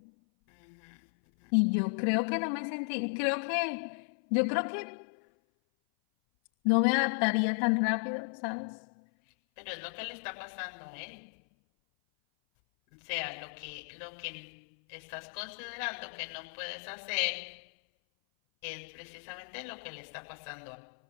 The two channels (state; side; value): silent; right; 55 dB below the other